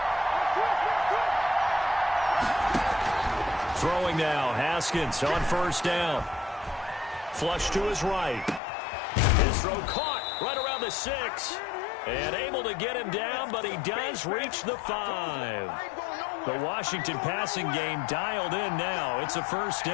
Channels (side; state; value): right; drops out; at 8.6 s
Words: Throwing now, Haskins on first down. Flush to his right. His throw caught right around the 6. And able to get him down, but he does reach the 5. The Washington passing game dialed in now. It's a first